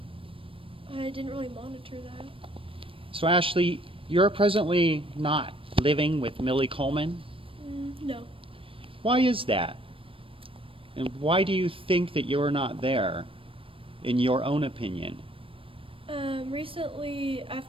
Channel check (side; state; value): left; late; 0.26 ms